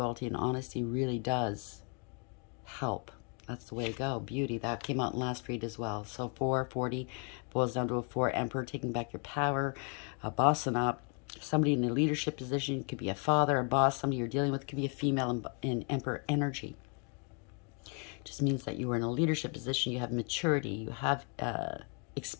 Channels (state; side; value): quieter; right; 38.0 dB